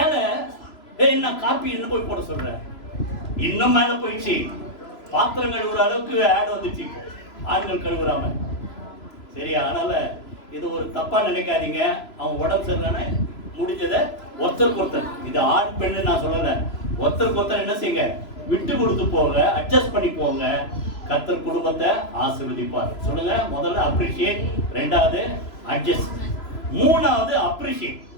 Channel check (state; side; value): late; right; 3.0 ms